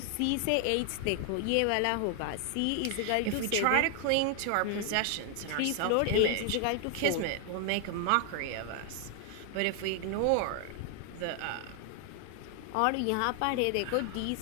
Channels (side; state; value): both; different; correlation 0.00